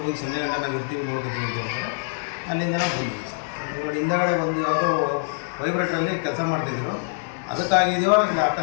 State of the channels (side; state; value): right; silent; digital silence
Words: ಹೋಗಿ ಸಂಜೆ ಗಂಟೆ ನಾವು ಇರ್ತೀವಿ ನೋಡ್ಕೊತೀವಿ ಅಂತ ಹೇಳ್ತಾರೆ. ಅಲ್ಲಿಂದ ನಾವು ಬಂದಿದ್ದೀವಿ ಸರ್. ನೋಡಿ ಹಿಂದಗಡೆ ಒಂದು ಯಾವುದೋ ವೈಬ್ರೇಟ್ರಲ್ಲಿ ಕೆಲಸ ಮಾಡ್ತಾಯಿದ್ರು. ಅದಕ್ಕಾಗಿದೆಯೋ ಇಲ್ಲ